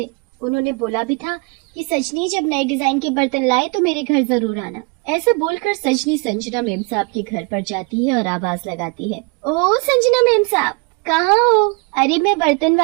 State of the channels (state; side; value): quieter; left; 31.5 dB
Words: उन्होंने बोला भी था कि सजनी जब नए डिजाइन के बर्तन लाए तो मेरे घर जरूर आना। ऐसा बोलकर सजनी संजना मैम साहब के घर पर जाती है और आवाज लगाती है, ओ संजना मैम साहब, कहाँ हो? अरे मैं बर्तन